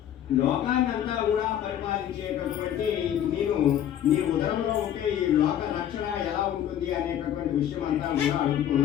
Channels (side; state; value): right; quieter; 10.5 dB